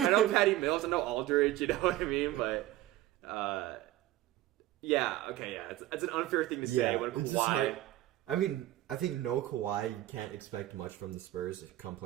know Patty Mills, I know Aldridge, you know what I mean? But, it's an unfair thing to say when Kawhi... I mean, I think no Kawhi, you can't expect much from the Spurs come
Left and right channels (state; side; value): quieter; left; 15.2 dB